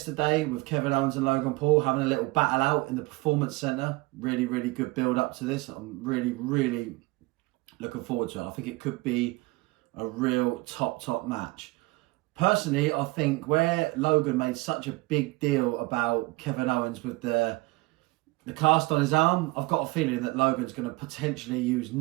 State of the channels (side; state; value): left; quieter; 22.6 dB